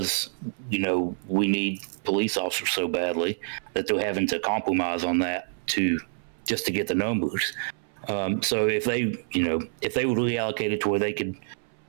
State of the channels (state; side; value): silent; left; 60 dB below the other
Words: you know, we need police officers so badly that they're having to compromise on that just to get the numbers. So if they would reallocate it to where they could,